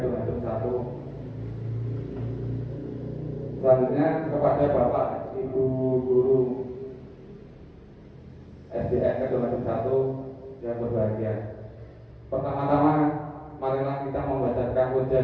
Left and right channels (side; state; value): both; identical; correlation 1.00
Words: 1. Selanjutnya kepada Bapak Ibu Guru SDN Kedung-Kedung 1 yang berbahagia. Pertama-tama marilah kita membacakan puja